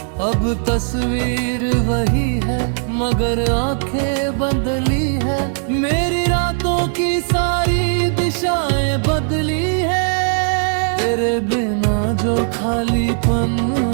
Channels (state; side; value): silent; left; digital silence